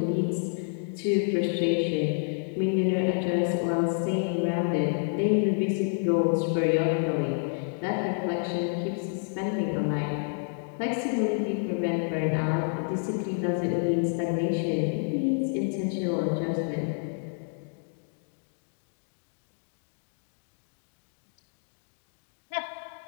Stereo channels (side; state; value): right; silent; 59 dB below the other